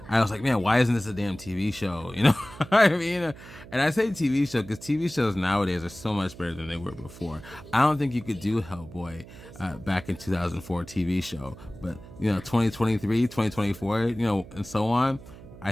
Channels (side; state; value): right; noise; hum, 18 dB below the sound